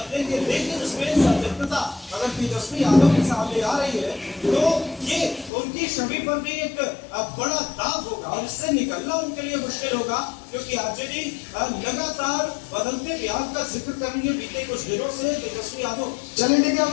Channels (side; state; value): right; drops out; at 5.5 s